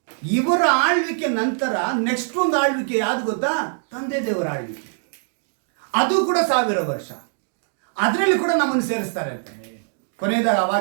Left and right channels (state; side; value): silent; left; digital silence